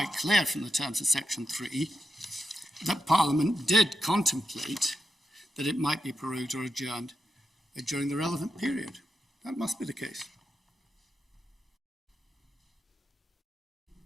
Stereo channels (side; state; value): both; normal; correlation 0.86